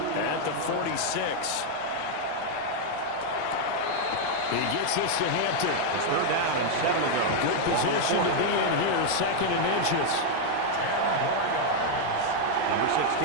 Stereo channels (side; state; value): both; different; correlation 0.00